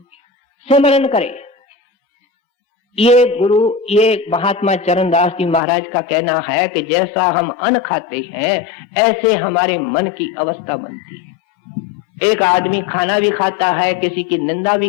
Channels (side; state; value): right; drops out; at 5.6 s